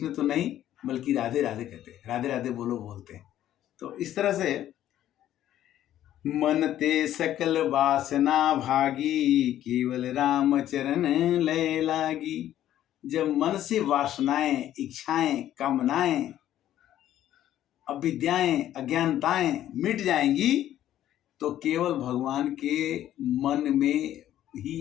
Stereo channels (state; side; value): quieter; right; 12.2 dB